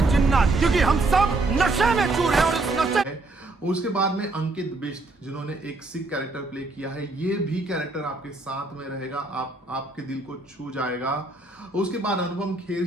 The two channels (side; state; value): left; quieter; 3.1 dB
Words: जिन्नात, क्योंकि हम सब नशे में चूर हैं और इस नशे। उसके बाद में अंकित बिष्ट, जिन्होंने एक सिख कैरेक्टर प्ले किया है, ये भी कैरेक्टर आपके साथ में रहेगा, आपके दिल को छू जाएगा। उसके बाद अनुपम खेर